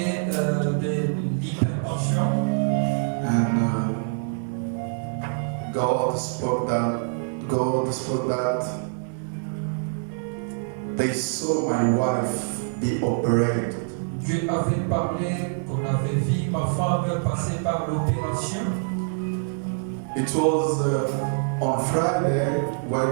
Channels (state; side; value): silent; left; 62 dB below the other